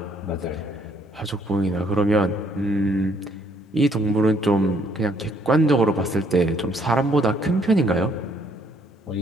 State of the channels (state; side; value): normal; both; correlation 0.66